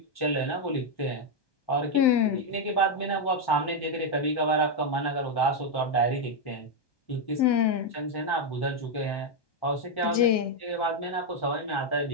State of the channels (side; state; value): right; late; 1.2 ms